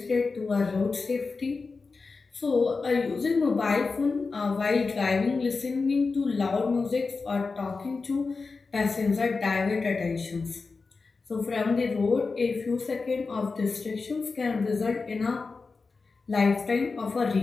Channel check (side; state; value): right; quieter; 4.3 dB